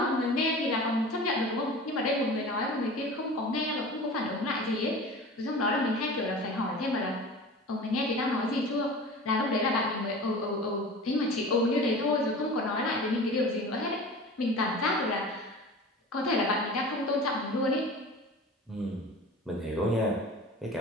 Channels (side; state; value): both; normal; correlation 0.37